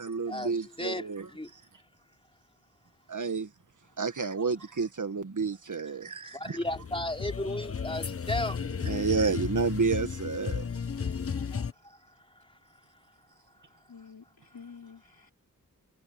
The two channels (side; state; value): both; normal; correlation 0.07